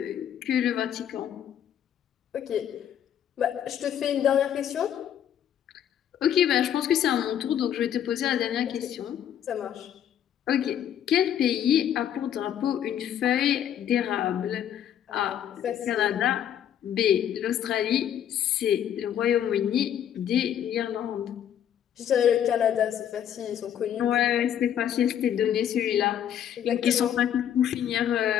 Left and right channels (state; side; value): quieter; right; 9.9 dB